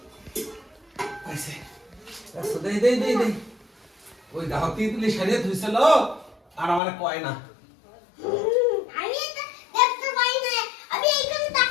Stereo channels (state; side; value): drops out; right; at 6.8 s